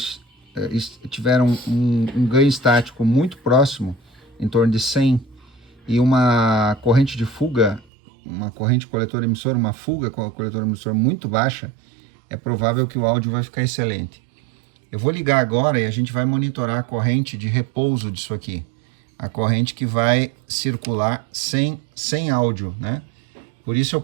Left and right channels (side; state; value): left; drops out; at 7.9 s